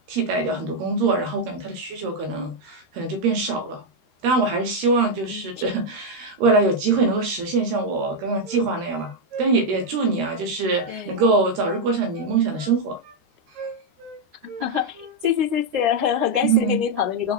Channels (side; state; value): left; late; 13 ms